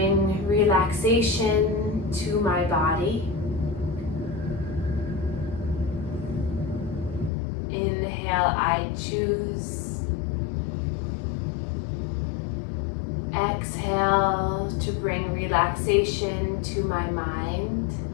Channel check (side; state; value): right; drops out; at 7.3 s